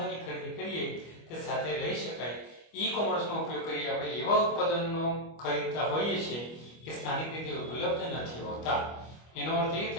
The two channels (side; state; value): right; late; 25 ms